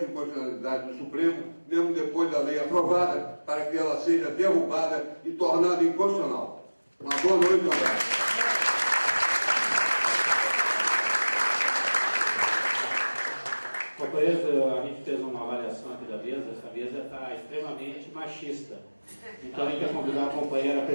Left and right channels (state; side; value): inverted; both; correlation -1.00